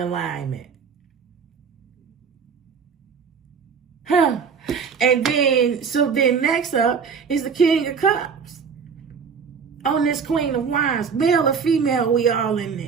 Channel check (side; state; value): left; quieter; 6.1 dB